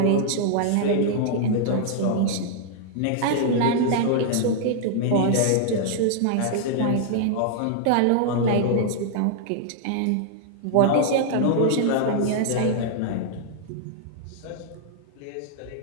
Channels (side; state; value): both; different; correlation -0.01